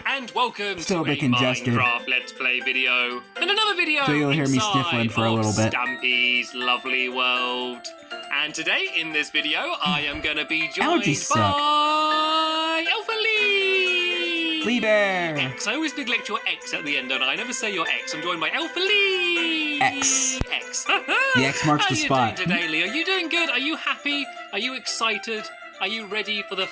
and welcome to a Minecraft Let's Play video, and another video So you'll hear me sniffling for a little bit. Stampy's Lovely World. And today, in this video, I am going to be joined by Alpha Lee! Lee Bear! X. I always neglect your X at the end, don't I? I never say your X. I'm joined by Alpha Lee! X. X. The X marks the spot. How are you doing today, Lee? Are you doing good? Are you happy? Are you excited? Are you ready for the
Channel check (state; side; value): identical; both; correlation 1.00